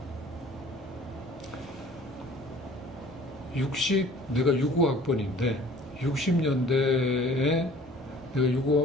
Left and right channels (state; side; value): normal; both; correlation 0.50